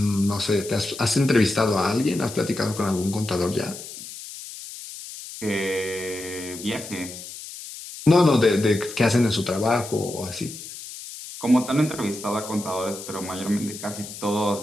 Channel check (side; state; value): left; noise; hiss, 12 dB below the sound